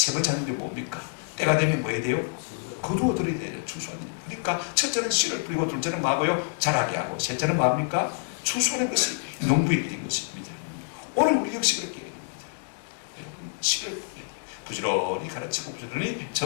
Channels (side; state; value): right; silent; digital silence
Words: 번째 하는 일이 뭡니까? 때가 되면 뭐 해야 돼요? 거두어들어야 돼요. 추수하는 일. 그러니까 첫째는 씨를 뿌리고, 둘째는 뭐하고요? 자라게 하고, 셋째는 뭐합니까? 추수하는 것이 농부의 일인 것입니다. 오늘 우리 역시 그렇게 해야 됩니다. 여러분, 씨를 뿌려야 돼요. 부지런히 가르치고 부지런히